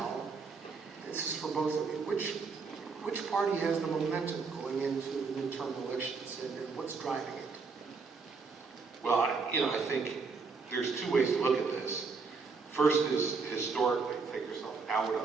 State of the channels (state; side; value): quieter; left; 4.8 dB